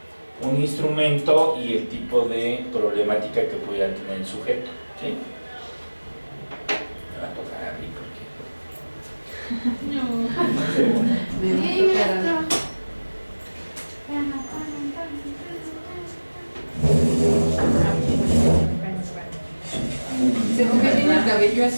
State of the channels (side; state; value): both; inverted; correlation -1.00